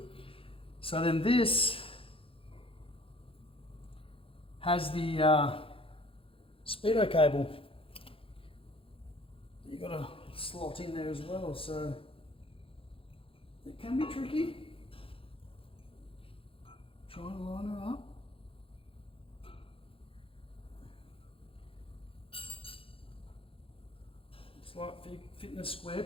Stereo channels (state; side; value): late; right; 0.27 ms